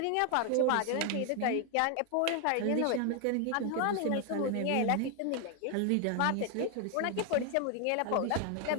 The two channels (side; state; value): both; different; correlation 0.01